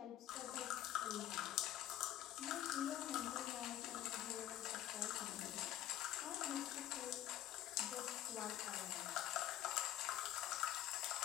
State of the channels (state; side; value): quieter; right; 12.9 dB